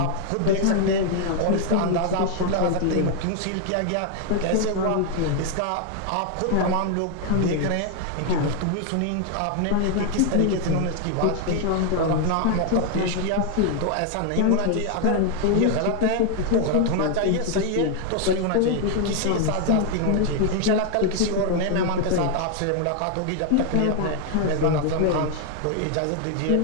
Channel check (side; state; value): both; different; correlation 0.00